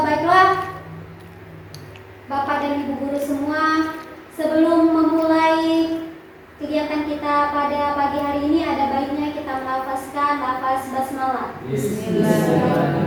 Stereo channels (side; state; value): both; identical; correlation 1.00